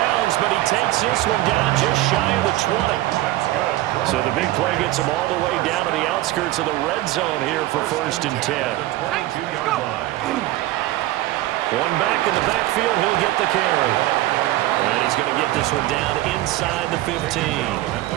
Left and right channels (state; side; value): quieter; left; 16.3 dB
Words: but he takes this one down just shy of the 20. So the big play gets him all the way down to the outskirts of the red zone here for 1st and 10. One back in the backfield, he'll get the carry. And he's going to get this one down inside the 15.